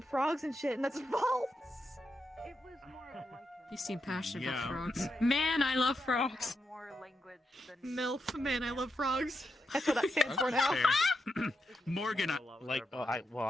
frogs and shit, and that's false. It was more like You seem passionate Yeah. about frogs. Man, I love frogs. more language than MILF, man, I love frogs. That's what that stands for now. Fair. Morgan, like, I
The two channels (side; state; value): both; normal; correlation 0.85